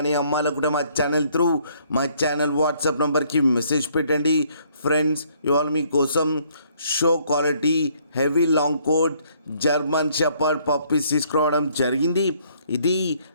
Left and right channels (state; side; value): inverted; both; correlation -0.65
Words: అమ్మాలనుకుంటే మా ఛానల్ త్రూ మా ఛానల్ వాట్సాప్ నెంబర్కి మెసేజ్ పెట్టండి. ఫ్రెండ్స్, ఇవాళ మీకోసం show quality heavy long coat German shepherd puppies తీసుకురావడం జరిగింది. ఇది